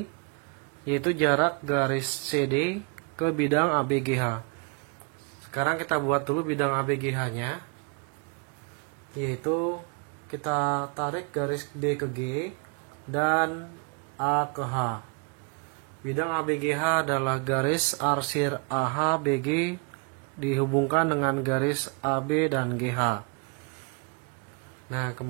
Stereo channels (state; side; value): quieter; left; 35.0 dB